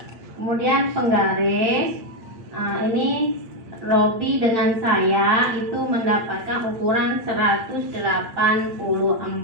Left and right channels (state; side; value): late; left; 8.7 ms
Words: Kemudian penggaris, ini Robi dengan saya itu mendapatkan ukuran 184